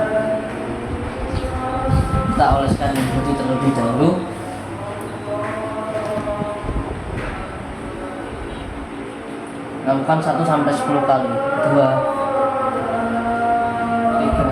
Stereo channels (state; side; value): identical; both; correlation 1.00